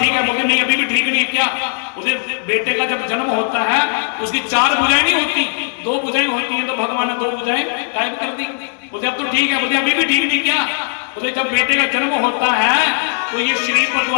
है। बोले नहीं अभी भी ठीक नहीं। क्या? उसे बेटे का जब जन्म होता है उसकी 4 भुजाएं नहीं होती, 2 भुजाएं होती हैं। तो भगवान ने 2 भुजाएं गायब कर दी। बोले अब तो ठीक है। बोले अभी भी ठीक नहीं। क्या? बोले जब बेटे का जन्म होता है तो ये शरीर पर जो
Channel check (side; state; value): right; silent; 65 dB below the other